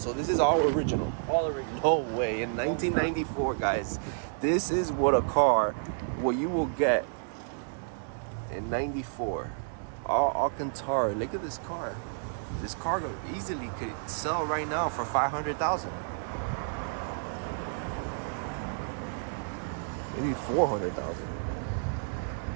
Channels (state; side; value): silent; left; digital silence